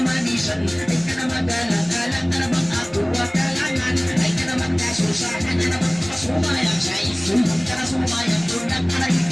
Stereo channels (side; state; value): right; noise; hum, 25 dB below the sound